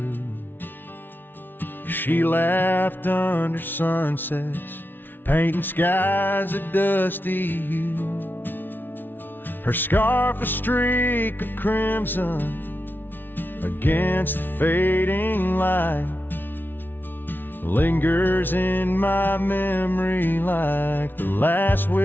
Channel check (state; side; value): late; right; 0.095 ms